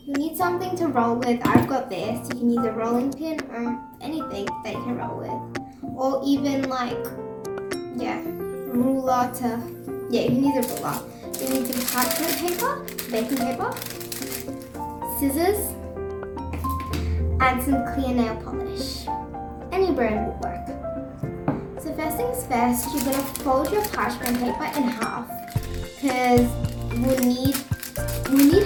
You need something to roll with. I've got this. You can use a rolling pin or anything that you can roll with. Or even ruler to, you can use a ruler. You need some parchment paper, baking paper, scissors, and some clear nail polish. Any brand will work. So first things first, you're gonna fold your parchment paper in half because we'll need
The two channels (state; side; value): identical; both; correlation 1.00